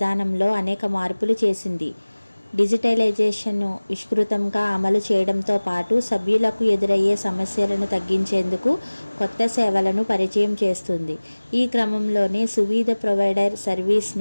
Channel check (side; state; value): both; inverted; correlation -1.00